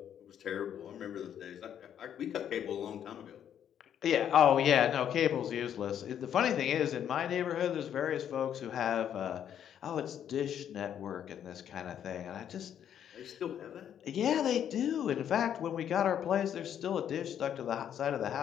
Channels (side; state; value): right; quieter; 9.5 dB